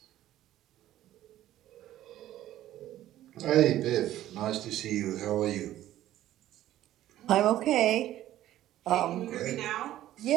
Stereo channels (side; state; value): left; quieter; 13.5 dB